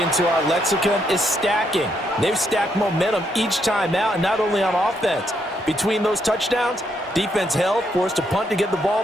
into our lexicon is stacking. They've stacked momentum each time out, and not only on offense. Between those touchdowns, defense held, forced a punt to get the ball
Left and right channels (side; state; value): both; normal; correlation 0.76